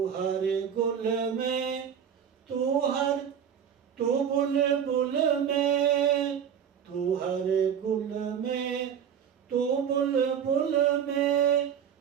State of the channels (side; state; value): left; quieter; 8.2 dB